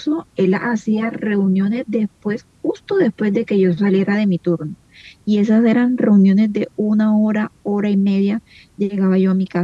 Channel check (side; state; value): both; identical; correlation 1.00